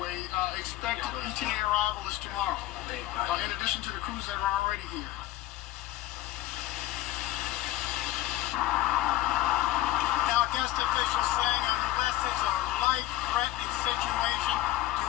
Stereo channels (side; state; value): right; quieter; 15.3 dB